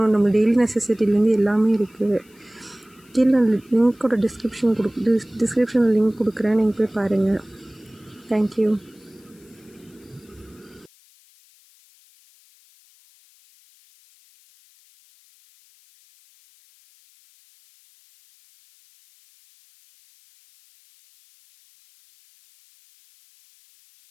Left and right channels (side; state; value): left; noise; hiss, 30 dB below the sound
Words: நம்ம டெய்லி நெசசிட்டிலேருந்து எல்லாமே இருக்குது. கீழே லிங்க்கோட டிஸ்கிரிப்ஷனில் லிங்க் கொடுக்குறேன், நீங்கள் போய் பாருங்கள். தேங்க்யூ.